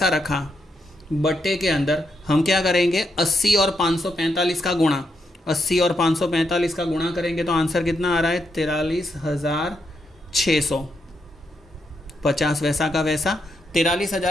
रखा। बट्टे के अंदर हम क्या करेंगे, 80 और 545 का गुणा, 80 और 545 का गुणा करेंगे तो आंसर कितना आ रहा है, 43600। 50 वैसा का वैसा,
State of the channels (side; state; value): both; normal; correlation 0.80